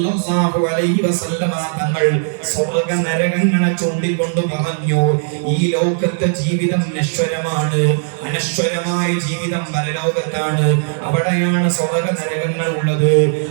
അലൈഹി വസല്ലം തങ്ങൾ സ്വർഗ്ഗ നരകങ്ങളെ ചൂണ്ടിക്കൊണ്ട് പറഞ്ഞു, ഈ ലോകത്തെ ജീവിതം നശ്വരമാണ്, അനശ്വരമായ ജീവിതം പരലോകത്താണ്. അവിടെയാണ് സ്വർഗ്ഗ നരകങ്ങൾ ഉള്ളത്.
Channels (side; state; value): left; silent; digital silence